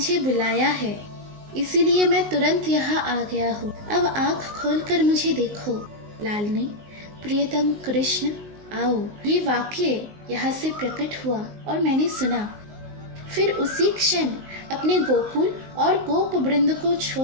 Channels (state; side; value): late; left; 19 ms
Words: बुलाया है, इसीलिए मैं तुरंत यहाँ आ गया हूँ। अब आँख खोलकर मुझे देखो। लालनी, प्रियतम कृष्ण, आओ, ये वाक्य यहाँ से प्रकट हुआ और मैंने सुना। फिर उसी क्षण अपने गोकुल और गोप वृंद को